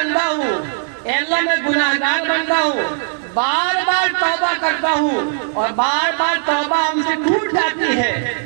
ہوں، اے اللہ میں گناہگار بندہ ہوں، بار بار توبہ کرتا ہوں اور بار بار توبہ ہم سے ٹوٹ جاتی ہے،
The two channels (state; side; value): silent; left; 67 dB below the other